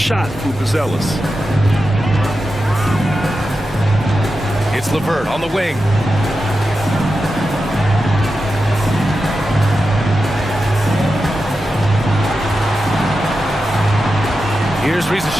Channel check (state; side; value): normal; both; correlation 0.90